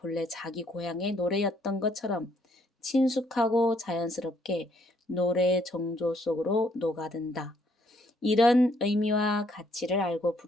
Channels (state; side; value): normal; both; correlation 0.69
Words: 자기 고향의 노래였던 것처럼 친숙하고 자연스럽게 노래의 정조 속으로 녹아든다. 이런 의미와 가치를 알고